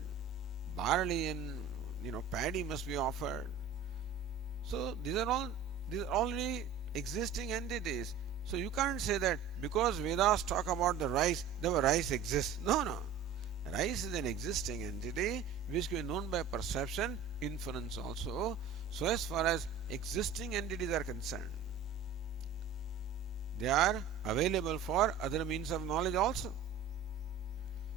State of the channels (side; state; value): left; quieter; 6.5 dB